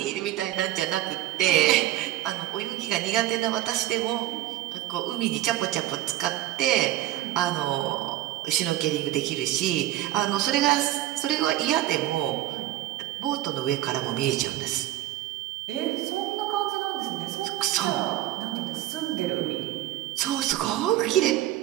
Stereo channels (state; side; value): quieter; left; 14.3 dB